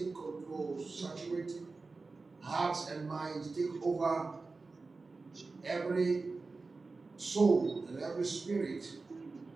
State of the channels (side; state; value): left; quieter; 3.9 dB